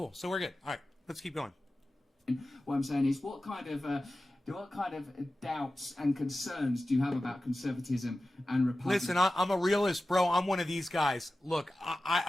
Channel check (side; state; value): both; normal; correlation 0.94